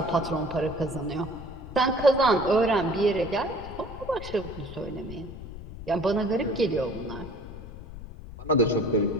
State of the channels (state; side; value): noise; left; rumble, 12 dB below the sound